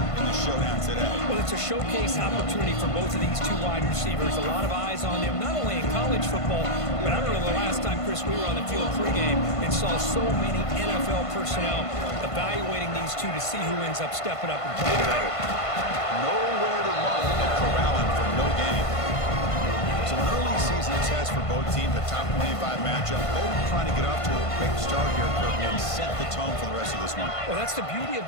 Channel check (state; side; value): late; right; 1.5 ms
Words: in the showdown today. Well, it's a showcase opportunity for both of these two wide receivers. A lot of eyes on them, not only in college football, but I remember the last time, Chris, we were on the field pregame and saw so many NFL personnel evaluating these two to see who ends up stepping up and playing better. Nowhere to run and corralling for no gain. So an early season test for both teams, the top 25 matchup. Both trying to get off to a quick start here, Kirk, and set the tone for the rest of this one. Well, that's the beauty of